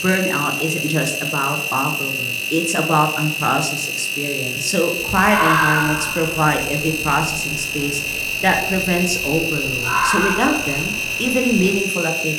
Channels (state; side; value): identical; both; correlation 1.00